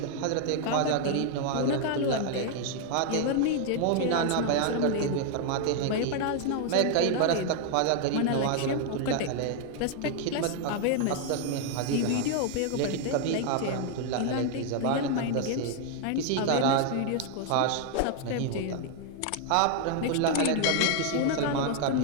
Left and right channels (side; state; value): both; different; correlation 0.00